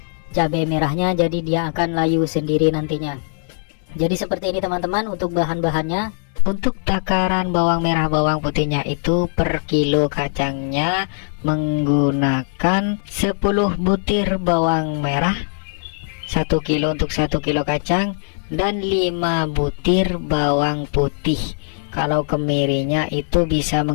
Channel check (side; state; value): right; silent; digital silence